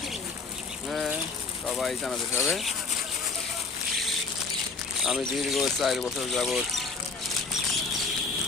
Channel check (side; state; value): right; quieter; 4.3 dB